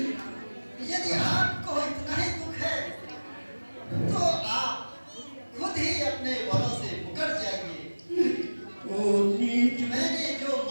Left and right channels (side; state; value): both; inverted; correlation -1.00